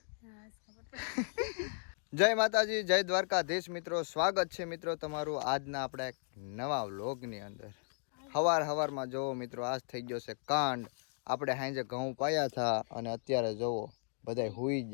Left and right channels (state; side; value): silent; right; digital silence